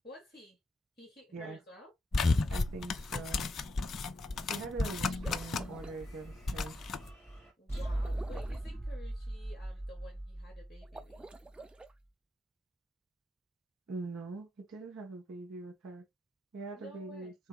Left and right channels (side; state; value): both; normal; correlation 0.84